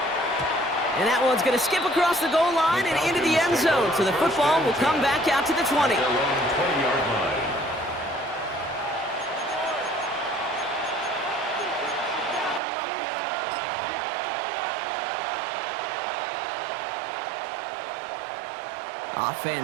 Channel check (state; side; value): drops out; left; at 12.6 s